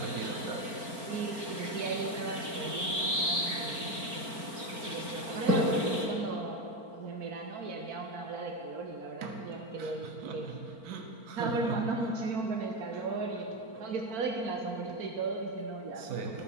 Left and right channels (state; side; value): late; left; 4.4 ms